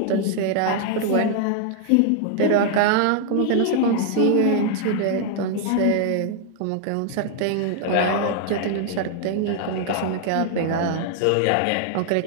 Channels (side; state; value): both; different; correlation 0.00